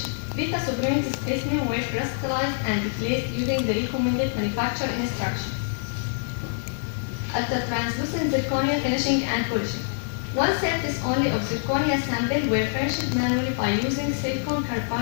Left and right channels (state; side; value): silent; right; digital silence